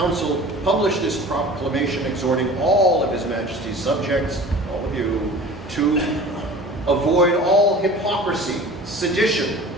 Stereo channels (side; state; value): both; normal; correlation 0.41